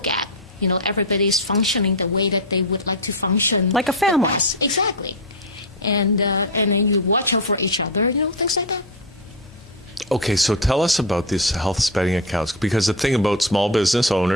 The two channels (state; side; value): normal; both; correlation 0.11